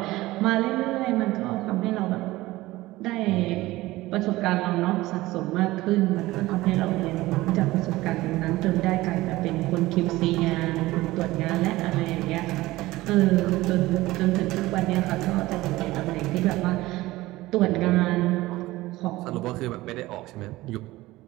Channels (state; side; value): quieter; left; 18.3 dB